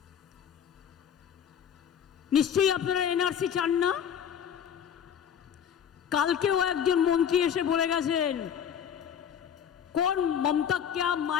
নিশ্চয়ই আপনারা এনআরসি চান না? কালকেও একজন মন্ত্রী এসে বলে গেছেন, কোন মমতা क्या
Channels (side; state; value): right; quieter; 8.5 dB